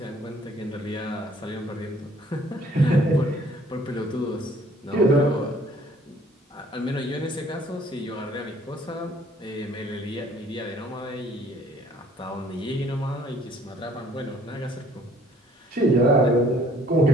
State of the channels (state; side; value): normal; both; correlation 0.58